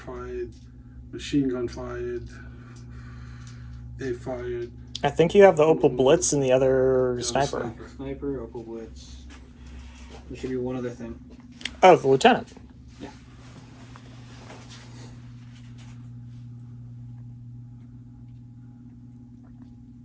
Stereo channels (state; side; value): identical; both; correlation 1.00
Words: Machine gun fired. They fired. I think you have the Opel Blitz and the other sniper. Sniper, Opal Blitz. There should be one other thing. Oh, the lieutenant. Yeah.